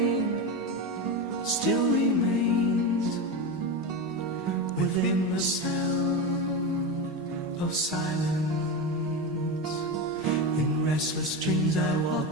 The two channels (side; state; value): both; normal; correlation 0.18